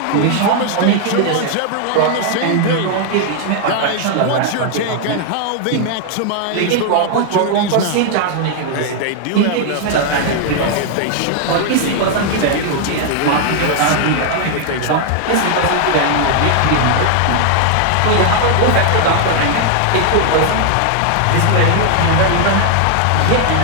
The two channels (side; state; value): both; different; correlation 0.00